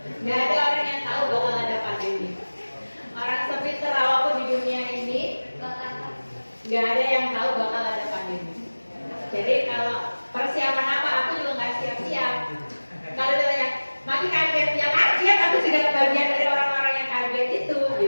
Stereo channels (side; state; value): both; inverted; correlation -1.00